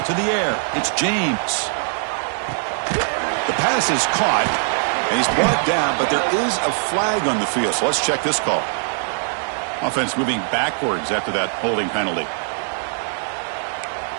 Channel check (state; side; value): silent; left; digital silence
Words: To the air. It's James. The pass is caught, and he's brought down, but there is a flag on the field. So let's check this call. Offense moving backwards after that holding penalty.